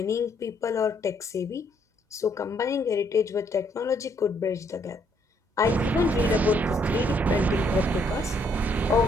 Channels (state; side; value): normal; both; correlation 0.69